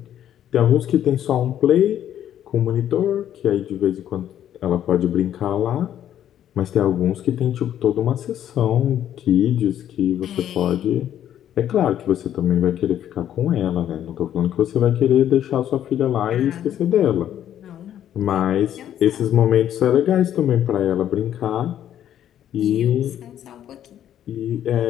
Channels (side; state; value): right; quieter; 10.8 dB